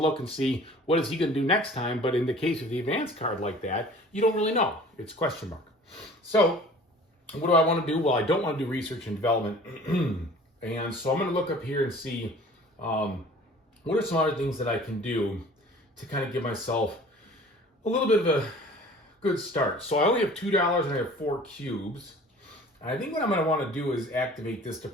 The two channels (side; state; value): both; normal; correlation 0.47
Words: and see what is he going to do next time. But in the case of the advanced card like that, you don't really know. It's question mark. So what do I want to do? Well, I don't want to do research and development. And so I'm going to look up here and see what are some other things that I can do to kind of give myself a little bit of a good start. So I only have $2 and I have 4 cubes. I think what I'm going to want to do is activate this